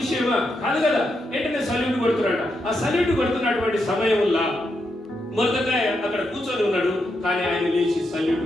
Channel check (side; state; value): both; normal; correlation 0.83